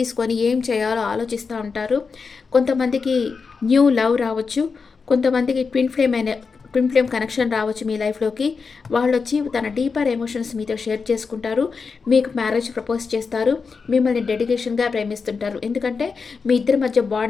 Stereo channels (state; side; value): quieter; right; 5.0 dB